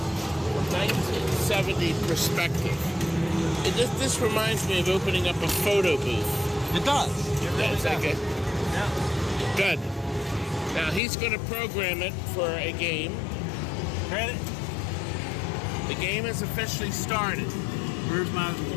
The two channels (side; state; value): right; drops out; at 11.0 s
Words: from 1970 perspective? This reminds me of opening up a photo booth. It does. It really That's does. okay. Yeah. Good. Now he's going to program it for a game. Credit. The game has officially started. Where's my